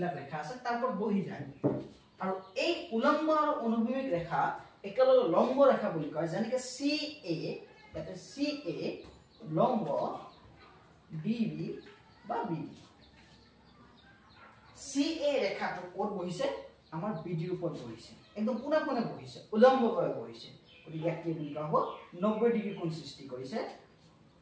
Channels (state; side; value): identical; both; correlation 1.00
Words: ৰেখা আছে তাৰ ওপৰত বহি যায় আৰু এই উলম্ব আৰু অনুভূমিক ৰেখা একেলগে লম্ব ৰেখা বুলি কয় যেনেকৈ CA এটা CA লম্ব BB বা BD CA ৰেখাটো ক'ত বহিছে আমাৰ BD ৰ ওপৰত বহিছে একদম পুনে পুনে বহিছে উলম্বভাৱে বহিছে গতিকে ইয়াক কি বুলি কোৱা হ'ব 90 ডিগ্ৰী কোণ সৃষ্টি কৰিছে